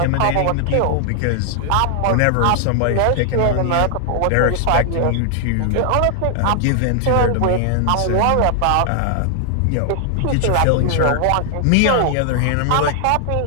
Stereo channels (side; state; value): both; different; correlation 0.00